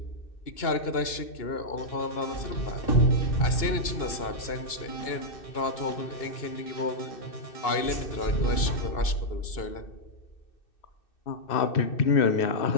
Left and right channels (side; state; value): right; late; 2.6 ms